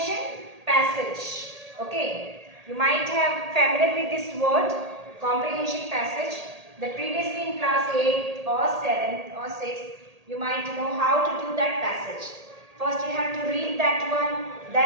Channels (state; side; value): late; left; 1.8 ms